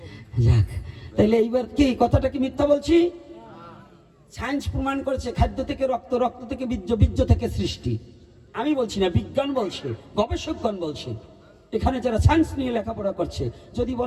যাক, তাইলে এইবার কি কথাটা কি মিথ্যা বলছি? সায়েন্স প্রমাণ করেছে খাদ্য থেকে রক্ত, রক্ত থেকে বীর্য, বীর্য থেকে সৃষ্টি। আমি বলছি না, বিজ্ঞান বলছে, গবেষকগণ বলছে। এখানে যারা সায়েন্স নিয়ে লেখাপড়া করছে যদি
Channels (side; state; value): both; identical; correlation 1.00